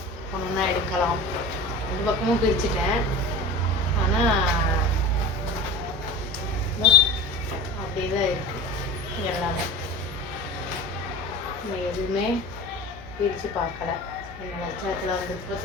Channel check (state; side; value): noise; left; hum, 17 dB below the sound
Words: ஒன்று எடுக்கலாம். ரெண்டு பக்கமும் பிரிச்சுட்டேன். ஆனால் அப்படியே தான் இருக்குது எல்லாமே. நான் எதுவுமே பிரித்து பார்க்கல. என்ன லட்சத்தில் வந்துட்டு